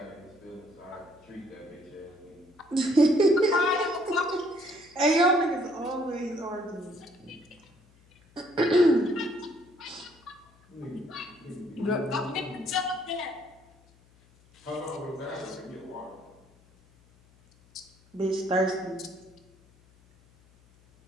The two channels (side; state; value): left; noise; hum, 29 dB below the sound